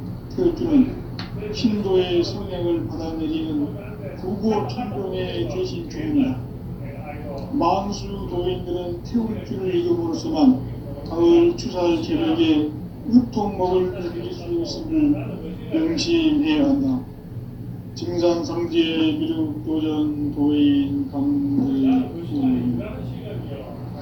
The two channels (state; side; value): identical; both; correlation 1.00